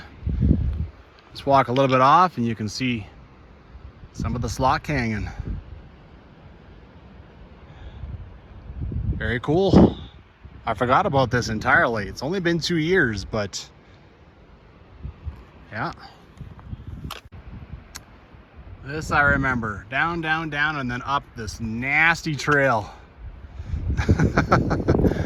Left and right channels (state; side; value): identical; both; correlation 1.00